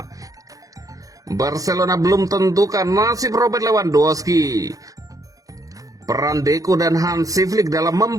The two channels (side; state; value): left; late; 0.17 ms